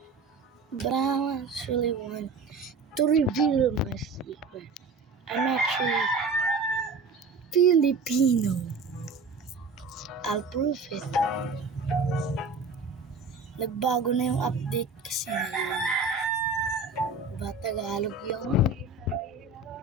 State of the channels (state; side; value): quieter; left; 3.9 dB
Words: But I actually want to reveal my secret. I'm actually Filipino. I'll prove it. Nagbago na yung update kasi ngayon. Diba Tagalog yun?